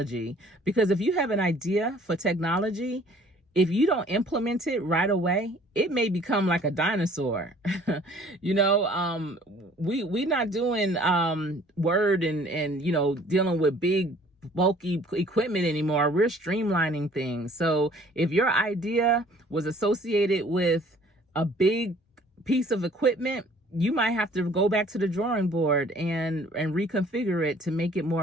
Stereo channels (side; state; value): both; normal; correlation 0.54